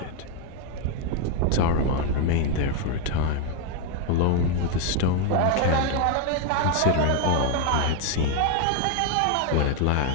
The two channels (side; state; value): both; different; correlation 0.01